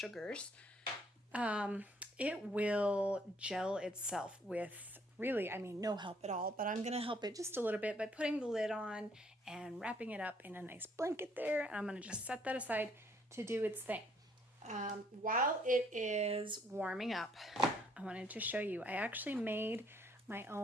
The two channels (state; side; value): normal; both; correlation 0.65